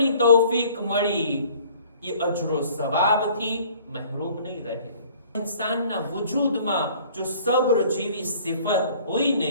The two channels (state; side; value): inverted; both; correlation -0.53